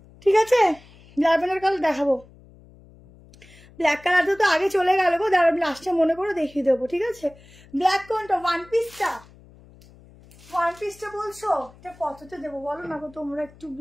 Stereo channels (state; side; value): noise; left; hum, 24 dB below the sound